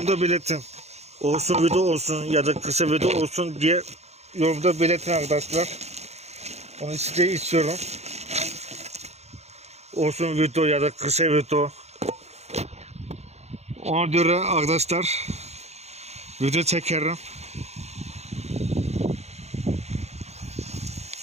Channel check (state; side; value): late; left; 0.31 ms